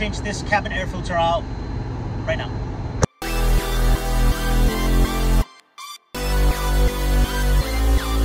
this cabin air filter out right now.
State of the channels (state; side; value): identical; both; correlation 1.00